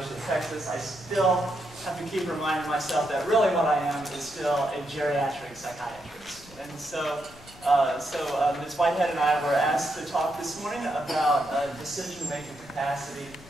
of Texas, I still have to keep reminding myself that really what I am is still a geriatric psychiatrist. And so Ms. Whitehead and I were asked to talk this morning about decision-making capacity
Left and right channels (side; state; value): left; noise; rumble, 22 dB below the sound